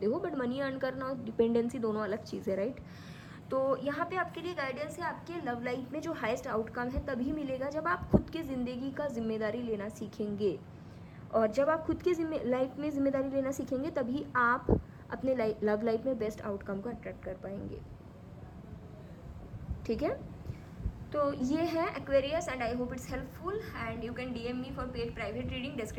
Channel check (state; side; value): identical; both; correlation 1.00